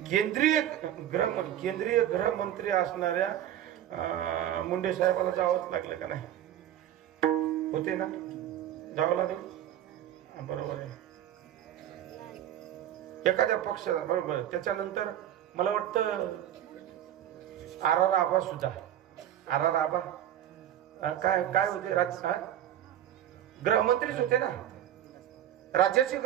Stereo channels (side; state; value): left; quieter; 11.5 dB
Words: केंद्रीय गृहमंत्री असणाऱ्या मुंडे साहेबाला जावंच लागलं का नाही? होते ना, जावं लागलं. बरोबर आहे. एखाद्या पक्षाला बरोबर. त्याच्यानंतर मला वाटतं आर आबा सुद्धा आबा काय होते? गृहमंत्रीच होते ना, राज्याचे